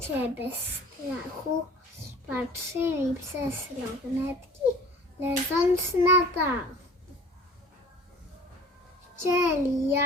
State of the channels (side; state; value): both; normal; correlation 0.45